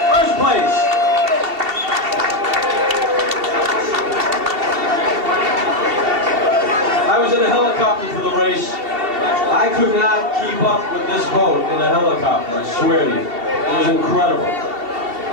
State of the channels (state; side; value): late; left; 2.7 ms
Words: First place. I was in a helicopter for the race. I could not keep up with this boat in a helicopter, I swear to you. It was incredible.